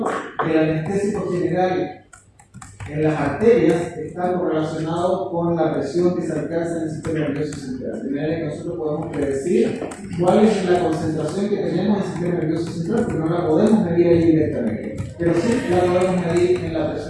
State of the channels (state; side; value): identical; both; correlation 1.00